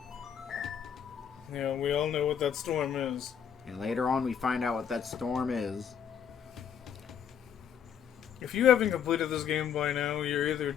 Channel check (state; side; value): quieter; right; 8.2 dB